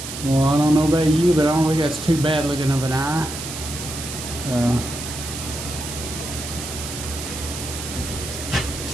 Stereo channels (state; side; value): noise; right; hiss, 8 dB below the sound